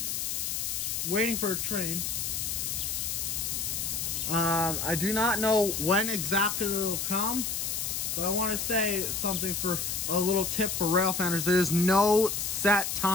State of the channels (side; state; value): left; noise; hiss, 2 dB below the sound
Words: waiting for a train. I do not know when exactly it'll come, but I want to say something for a little tip for rail fanners. There's no set